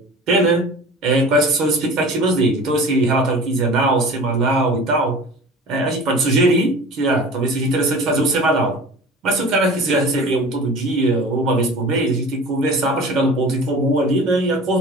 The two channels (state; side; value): normal; both; correlation 0.39